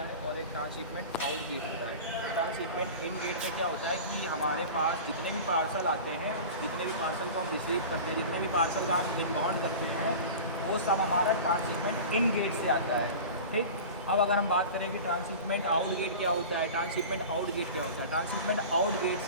और एक ट्रांसशिपमेंट आउट गेट होता है। ट्रांसशिपमेंट इन गेट में क्या होता है कि हमारे पास जितने भी पार्सल आते हैं, जितने भी पार्सल को हम रिसीव करते हैं, जितने भी पार्सल का हम इनबाउंड करते हैं, वो सब हमारा ट्रांसशिपमेंट इन गेट से आता है, ठीक। अब अगर हम बात करें कि ट्रांसशिपमेंट आउट गेट क्या होता है, ट्रांसशिपमेंट आउट गेट क्या होता है, ट्रांसशिपमेंट आउट गेट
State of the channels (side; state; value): both; inverted; correlation -0.34